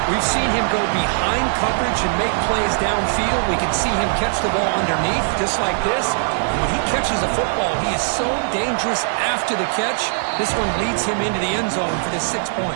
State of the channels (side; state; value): left; silent; digital silence